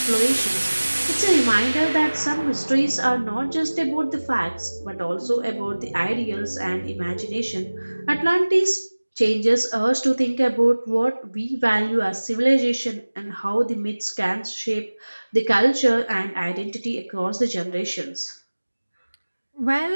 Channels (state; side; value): inverted; both; correlation -1.00